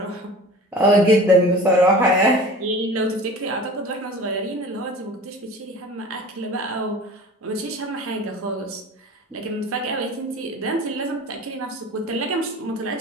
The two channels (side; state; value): both; normal; correlation 0.40